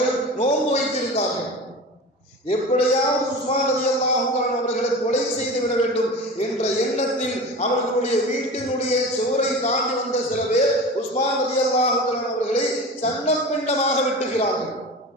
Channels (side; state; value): both; normal; correlation 0.32